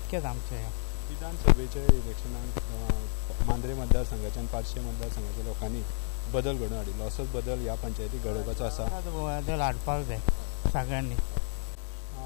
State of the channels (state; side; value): silent; right; digital silence